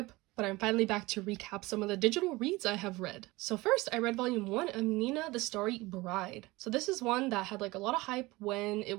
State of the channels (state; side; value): quieter; left; 21.3 dB